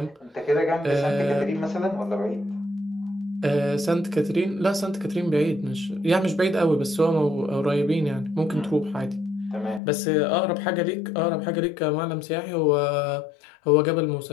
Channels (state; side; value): drops out; right; at 9.8 s